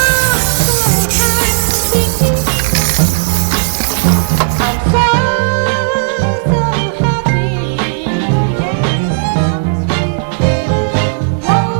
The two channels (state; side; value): silent; left; digital silence